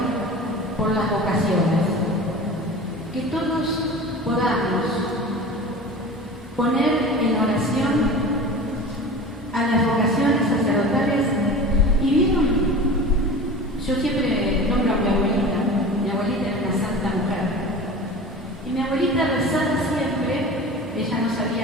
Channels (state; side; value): normal; both; correlation 0.35